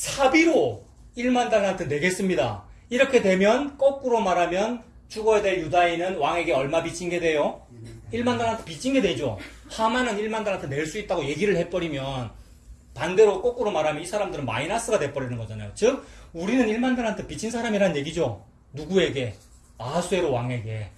1만 달란트 내겠습니다. 이렇게 되면 거꾸로 말하면 죽어야 될 유다인은 왕에게 얼마 빚진 게 돼요? 1만 달란트 빚진 게 되죠. 하만은 1만 달란트 낼 수 있다고 얘기를 해버리면 반대로 거꾸로 말하면 이 사람들은 마이너스가 돼버리는 거잖아요. 즉 우리는 1만 달란트 빚진 사람이란 얘기죠. 누구에게? 아하수에로 왕에게.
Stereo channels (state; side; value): identical; both; correlation 1.00